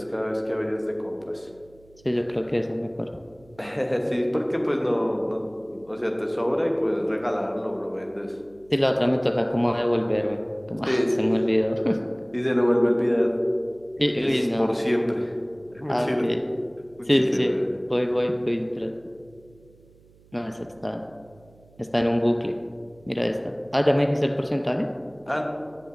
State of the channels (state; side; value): noise; right; hum, 28 dB below the sound